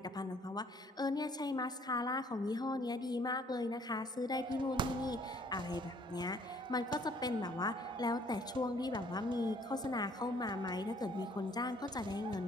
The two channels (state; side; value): normal; both; correlation 0.60